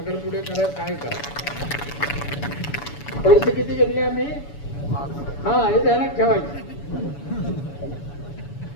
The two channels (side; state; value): right; late; 7.0 ms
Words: करा, काय करा. पैसे किती घेतले आम्ही? हा, हे ध्यानात ठेवायचे.